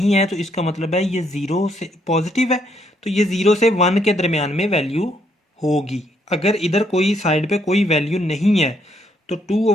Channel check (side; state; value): both; normal; correlation 0.72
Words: है तो इसका मतलब है ये 0 से पॉजिटिव है, तो ये 0 से 1 के दरमियान में वैल्यू होगी। अगर इधर कोई साइड पे कोई वैल्यू नहीं है तो